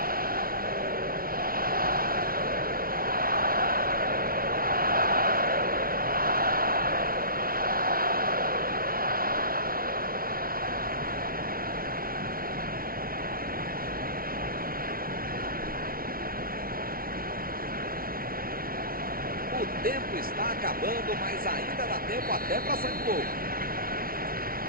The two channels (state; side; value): late; left; 0.43 ms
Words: O tempo está acabando, mas ainda dá tempo até para sair gol.